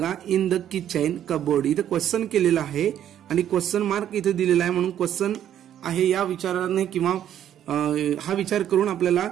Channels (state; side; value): quieter; left; 10.6 dB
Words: इन द किचन कबोर्ड। इथे क्वेश्चन केलेला आहे आणि क्वेश्चन मार्क इथे दिलेला आहे, म्हणून क्वेश्चन आहे या विचाराने किंवा हा विचार करून आपल्याला